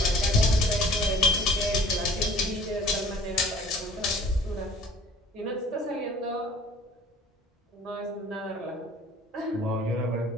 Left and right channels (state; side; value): normal; both; correlation 0.50